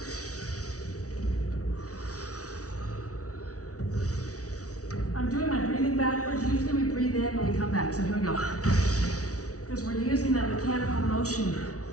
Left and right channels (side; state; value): right; late; 0.67 ms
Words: I'm doing my breathing backwards. Usually we breathe in when we come back. So here we go. Because we're using that mechanical motion